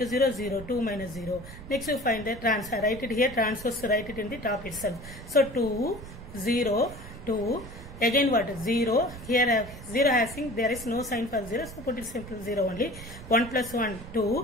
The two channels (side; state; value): right; noise; rumble, 14 dB below the sound